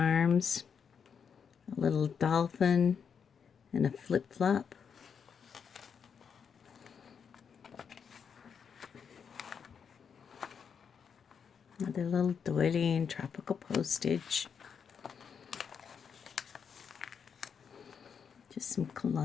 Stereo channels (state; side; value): quieter; right; 6.8 dB